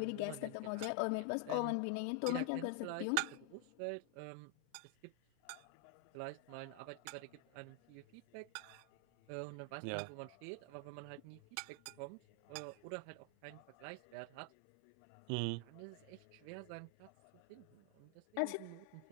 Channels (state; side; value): different; both; correlation 0.00